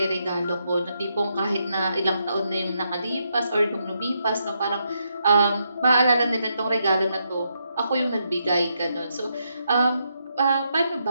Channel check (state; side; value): inverted; both; correlation -0.80